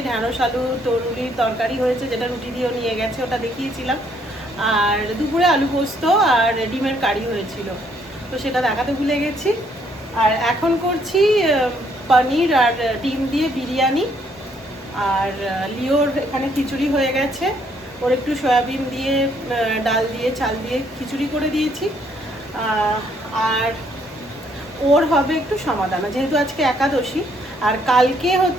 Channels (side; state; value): both; normal; correlation 0.68